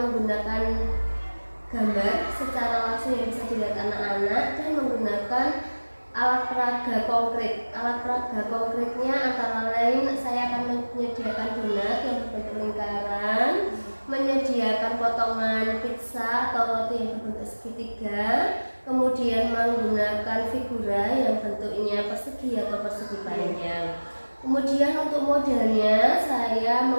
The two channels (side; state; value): both; inverted; correlation -1.00